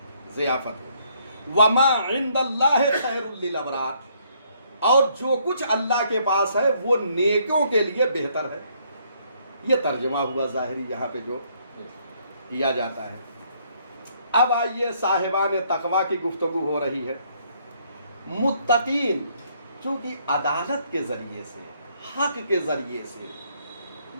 ضیافت ہوگی۔ وما عند اللہ خیر للابرار، اور جو کچھ اللہ کے پاس ہے وہ نیکوں کے لیے بہتر ہے۔ یہ ترجمہ ہوا ظاہری یہاں پہ جو کیا جاتا ہے۔ اب آئیے صاحبان تقویٰ کی گفتگو ہو رہی ہے۔ متقین چونکہ عدالت کے ذریعے سے، حق کے ذریعے سے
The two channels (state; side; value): inverted; both; correlation -0.68